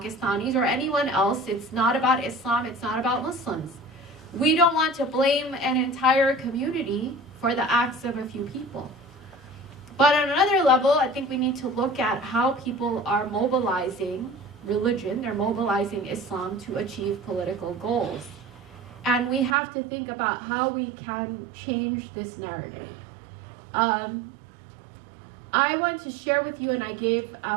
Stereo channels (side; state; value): left; drops out; at 19.6 s